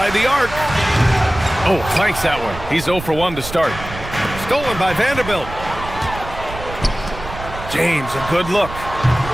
the arc. Oh, flanks that one. He's 0 for 1 to start. Stolen by Vanderbilt. James, a good look.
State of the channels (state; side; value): noise; right; rumble, 11 dB below the sound